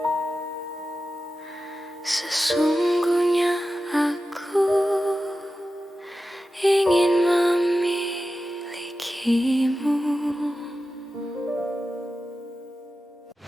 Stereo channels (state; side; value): normal; both; correlation 0.93